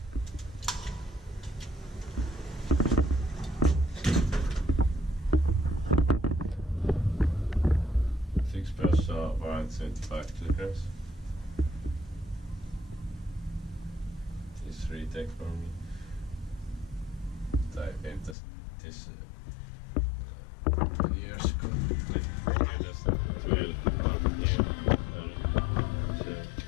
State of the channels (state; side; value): drops out; right; at 18.4 s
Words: Fixtures var 75 kilograms. This retake for me. I came this many years ago. Yeah, that's 12 years.